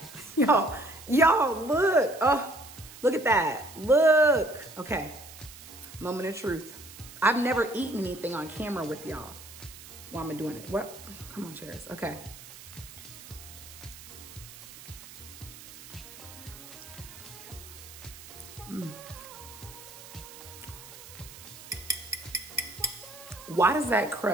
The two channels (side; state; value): right; noise; hiss, 16 dB below the sound